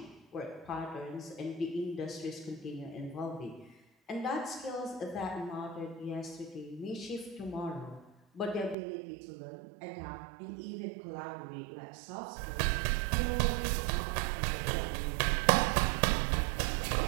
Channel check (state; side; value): drops out; left; at 8.8 s